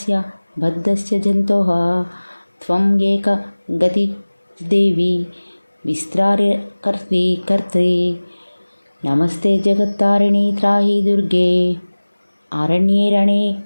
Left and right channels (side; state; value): both; inverted; correlation -1.00